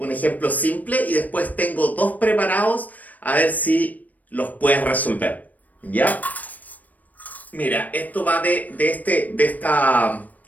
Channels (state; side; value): late; right; 0.078 ms